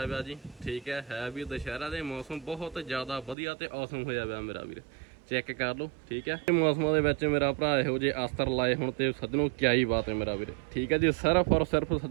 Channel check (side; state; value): left; drops out; at 3.4 s